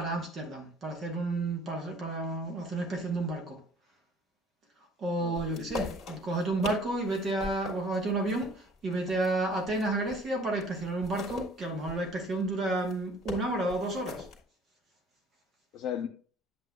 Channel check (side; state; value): both; normal; correlation 0.53